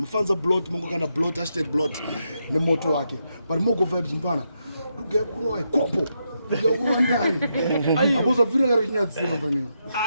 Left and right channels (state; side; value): inverted; both; correlation -0.83